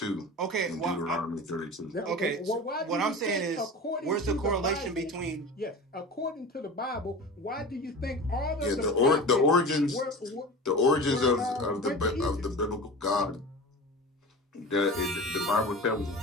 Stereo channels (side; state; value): both; normal; correlation 0.33